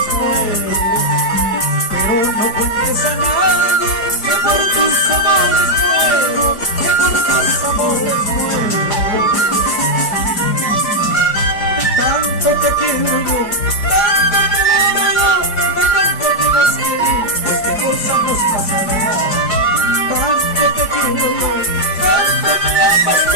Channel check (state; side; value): late; right; 4.8 ms